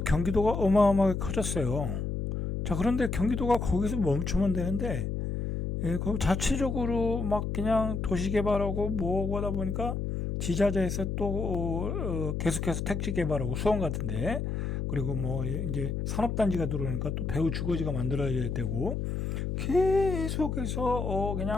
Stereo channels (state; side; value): noise; left; hum, 2 dB below the sound